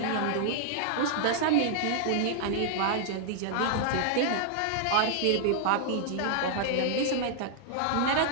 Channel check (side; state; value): both; different; correlation -0.01